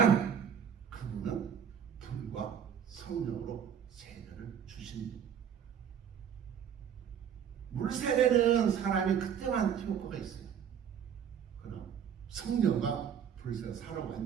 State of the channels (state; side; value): quieter; left; 8.2 dB